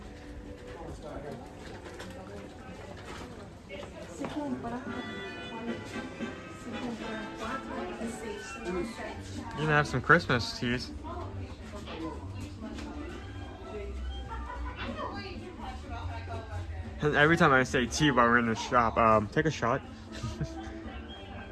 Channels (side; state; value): both; identical; correlation 1.00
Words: You can have some Christmas teas. And every time I say tea while we're in the shop, take a shot.